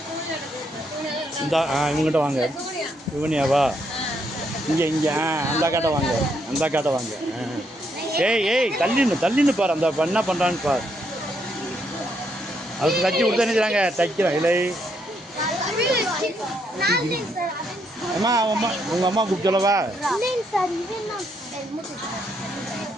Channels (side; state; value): both; normal; correlation 0.75